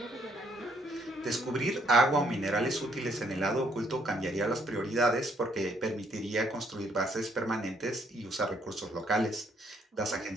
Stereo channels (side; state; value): both; normal; correlation 0.68